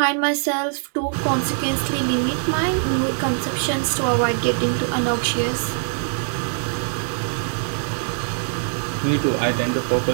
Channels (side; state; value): left; silent; digital silence